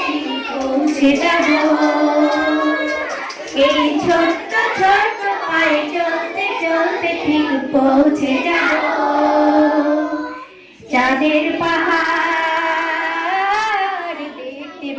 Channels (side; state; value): both; identical; correlation 1.00